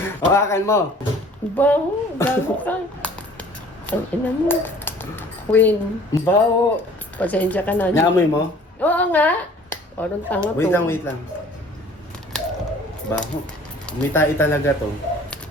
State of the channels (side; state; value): both; normal; correlation 0.51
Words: Hawakan mo. Baho, gago ka. Ang ina mo. Queen, Bawo. pasensya ka na. Naamoy mo? Oo nga. Parang tanga to. Wait lang. Baho. Umitai talaga to.